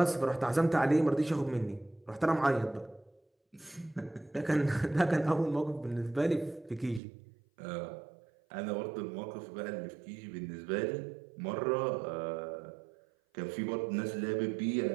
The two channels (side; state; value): left; drops out; at 7.0 s